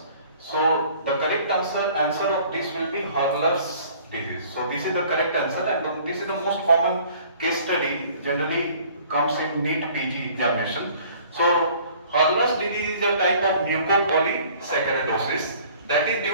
So the correct answer of this will be Hurler's disease. So this is the correct answer, and this is the most common case study, generally comes in Neet PG examination. So Hurler's disease is a type of mucopolysaccharidosis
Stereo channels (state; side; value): inverted; both; correlation -0.53